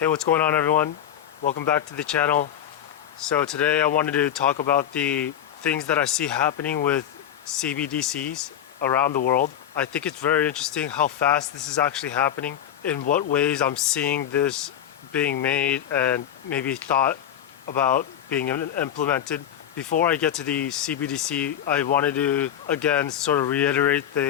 what's going on everyone? Welcome back to the channel. So today I wanted to talk about the things that I see happening with CBDCs around the world. I think it's very interesting how fast this is actually happening, in what ways I'm seeing this being made and maybe thought about being implemented. Before I get to the CBDC, I wanted to again sort of reiterate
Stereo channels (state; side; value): quieter; right; 10.2 dB